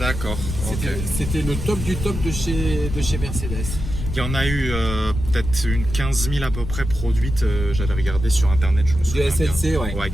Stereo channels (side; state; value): left; noise; rumble, 6 dB below the sound